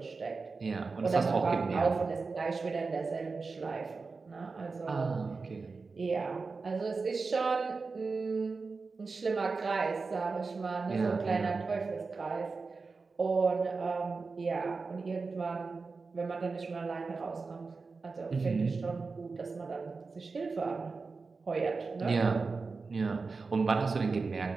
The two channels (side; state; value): left; quieter; 4.3 dB